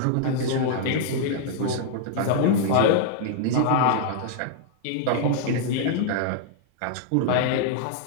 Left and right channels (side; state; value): both; different; correlation -0.01